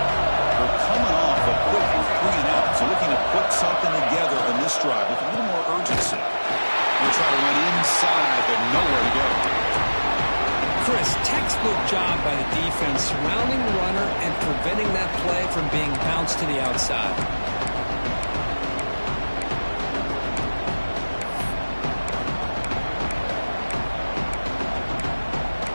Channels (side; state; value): both; inverted; correlation -1.00